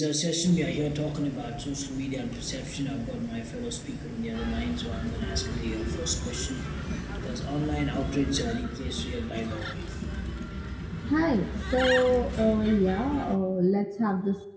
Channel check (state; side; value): identical; both; correlation 1.00